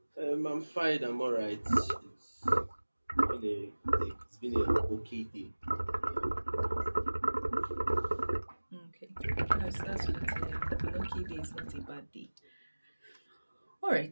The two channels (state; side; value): inverted; both; correlation -1.00